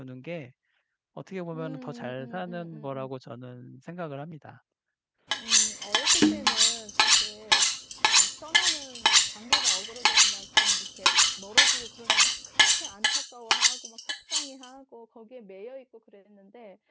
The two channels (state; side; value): identical; both; correlation 1.00